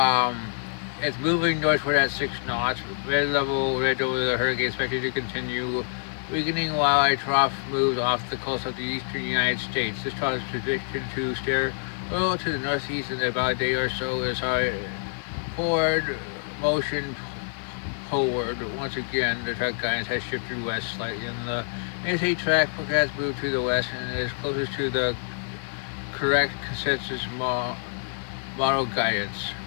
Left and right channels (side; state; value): right; silent; 61 dB below the other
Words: it's moving northward at 6 knots. Mid-level ridge over the hurricane expected to continue weakening while a trough moves off the coast of the eastern United States. This trough is predicted to steer well to the northeast in about a day or so as our forward motion forward. Once again, the track guidance has shifted west slightly, and the NSA track forecast moved to the west and is closest to the correct consensus model guidance.